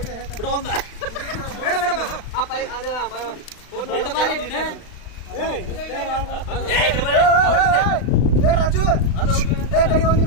ರಾಜು ಕಡಿ ಒಂದ್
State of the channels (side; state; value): right; late; 36 ms